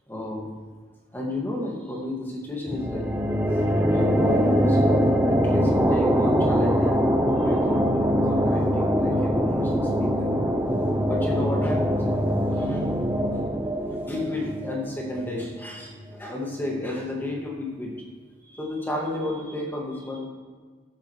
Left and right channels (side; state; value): both; normal; correlation 0.78